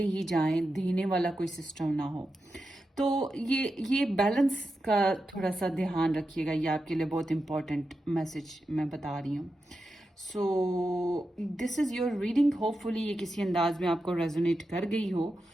ही जाएं, देने वाला कोई सिस्टम ना हो। तो ये बैलेंस का थोड़ा सा ध्यान रखिएगा। ये आपके लिए बहुत इंपॉर्टेंट मैसेज मैं बता रही हूँ। सो this is your reading. Hopefully ये किसी अंदाज में आपको रेजोनेट कर गई हो।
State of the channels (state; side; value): normal; both; correlation 0.89